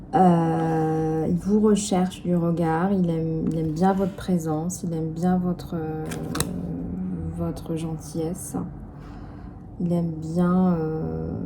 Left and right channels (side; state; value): both; identical; correlation 1.00